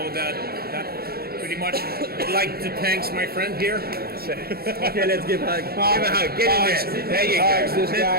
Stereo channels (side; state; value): left; late; 0.45 ms